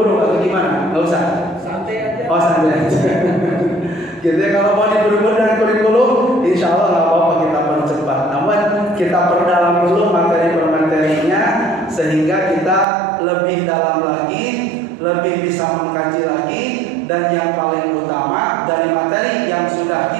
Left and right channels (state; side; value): drops out; left; at 12.9 s